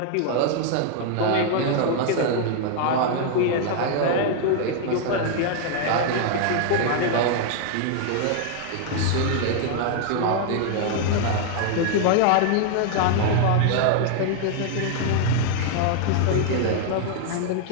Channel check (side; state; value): both; different; correlation 0.00